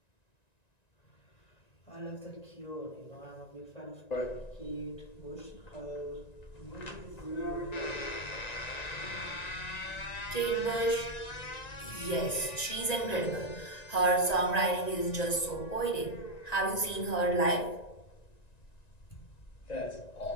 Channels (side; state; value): right; late; 1.9 ms